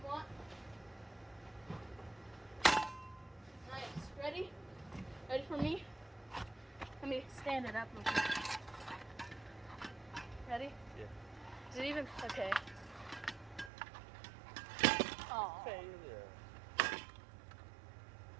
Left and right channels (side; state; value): left; drops out; at 13.7 s